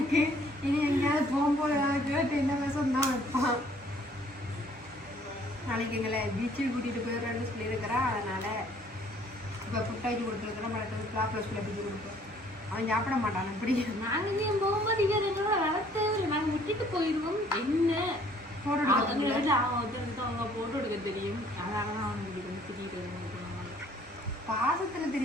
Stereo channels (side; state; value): both; normal; correlation 0.59